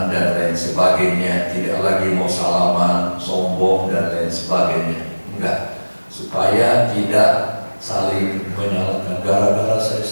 dan lain sebagainya, tidak lagi mau salaman, sombong dan lain sebagainya. Enggak, supaya tidak saling menyalahkan. Gara-gara saya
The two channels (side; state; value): both; inverted; correlation -1.00